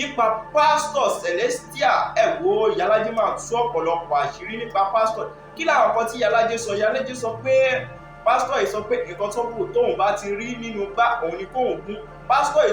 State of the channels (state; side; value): identical; both; correlation 1.00